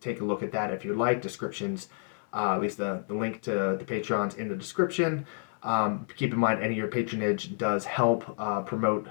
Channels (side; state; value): right; silent; digital silence